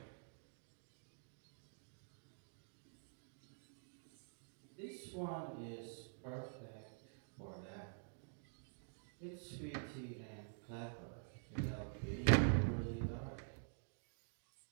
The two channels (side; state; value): left; silent; digital silence